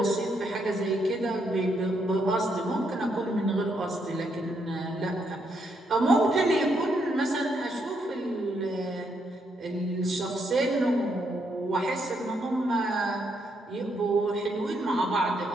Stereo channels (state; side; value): normal; both; correlation 0.76